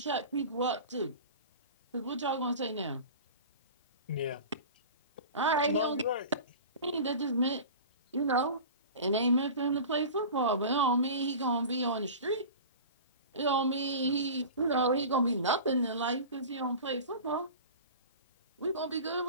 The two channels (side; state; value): both; inverted; correlation -0.35